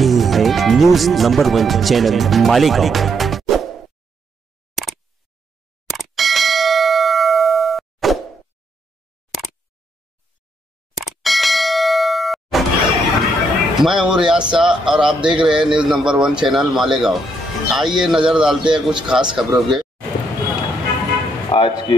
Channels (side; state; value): both; normal; correlation 0.76